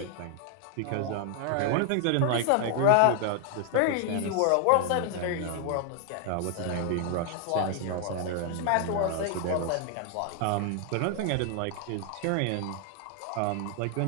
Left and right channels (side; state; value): both; different; correlation 0.00